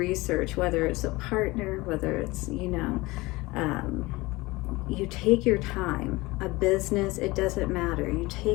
whether it's a partner, whether it's, you know, you take your time. A business, it doesn't matter. You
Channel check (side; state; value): right; quieter; 21.7 dB